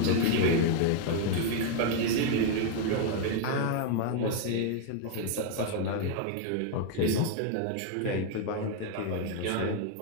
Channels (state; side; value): different; both; correlation 0.01